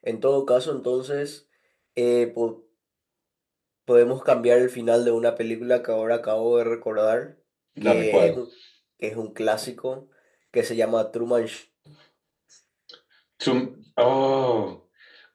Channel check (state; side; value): identical; both; correlation 1.00